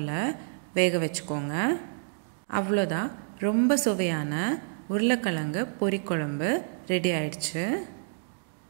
வேக வச்சுக்கோங்க. அவ்வளோதான், ரொம்ப சுவையான உருளைக்கிழங்கு பொரிக்குழம்பு ரெடி ஆயிடுச்சு.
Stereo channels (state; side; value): silent; left; digital silence